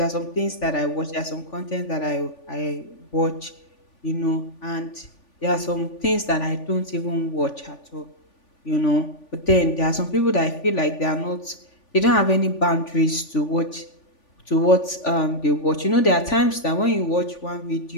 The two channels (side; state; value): right; late; 3.5 ms